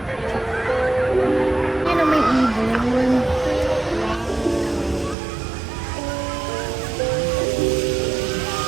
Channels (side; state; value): left; drops out; at 5.2 s